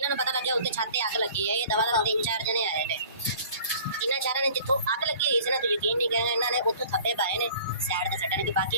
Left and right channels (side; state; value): both; inverted; correlation -0.48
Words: ਨੂੰ ਪਤਾ ਲੱਗਿਆ ਉੱਤੇ ਛੱਤ ਤੇ ਅੱਗ ਲੱਗੀ ਹੈ ਇਹ ਦਵਾ 3-4 ਜਣੇ ਆਏ ਨੇ ਇਹਨਾਂ ਚਾਰਾਂ ਨੇ ਜਿੱਥੋਂ ਅੱਗ ਲੱਗੀ ਹੋਈ ਸੀ ਨਾ ਤੂੰ ਯਕੀਨ ਨਹੀਂ ਕਰੇਗਾ ਇਹਨਾਂ ਨੇ ਉੱਥੋਂ ਥੱਪੇ ਪਾਏ ਨੇ ਸਾਈਡ ਤੇ ਛੱਡਣ ਕਿ